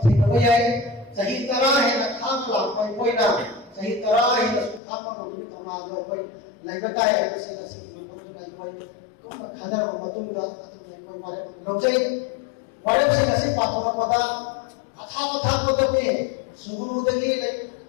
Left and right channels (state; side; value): drops out; right; at 4.8 s